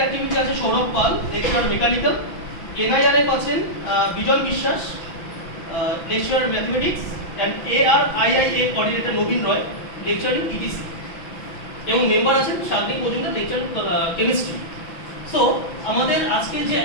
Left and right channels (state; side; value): late; right; 6.0 ms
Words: activity আছে Sourav Pal, lecture mechanical. NIRF আছেন Bijan Biswas, lecture mathematics. And ARIIA coordinator Nabin Roy, lecturing ETC. এবং মেম্বার আছেন Shantik Majumdar, lecture chemistry. So আমাদের আজকের যে